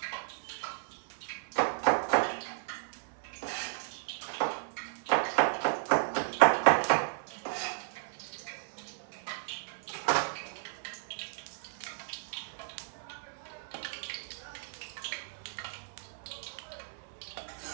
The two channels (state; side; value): silent; left; 55 dB below the other